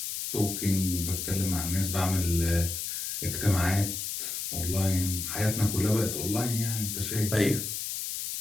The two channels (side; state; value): left; noise; hiss, 4 dB below the sound